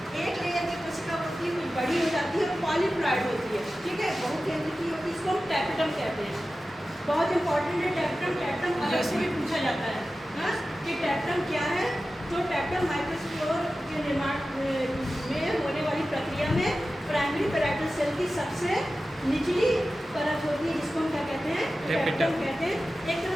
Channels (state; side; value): normal; both; correlation 0.94